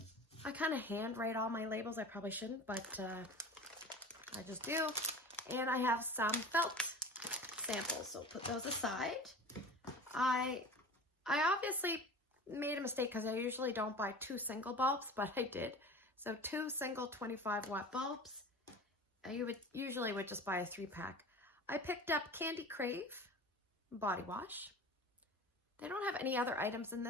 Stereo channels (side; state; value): both; normal; correlation 0.36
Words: I kind of handwrite all my labels. I probably shouldn't, but I just do. And I have some felt samples, so put those aside. I obviously made a mistake because I usually don't buy 2 single bulbs, but I did. So 2 single 25 watt bulbs. You would usually just buy a 3-pack. I picked up Candy Crave body wash. They don't have any other items in